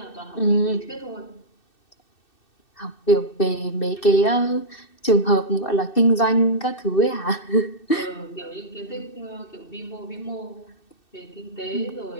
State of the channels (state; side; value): late; right; 2.6 ms